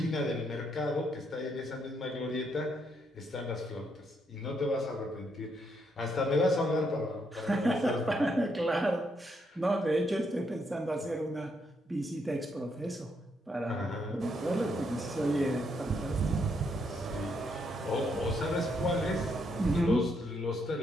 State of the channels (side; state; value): both; normal; correlation 0.76